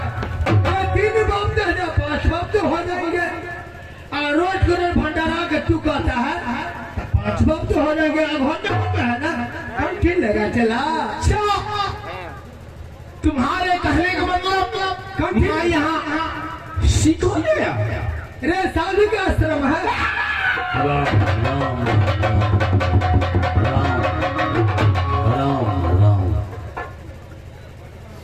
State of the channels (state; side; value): identical; both; correlation 1.00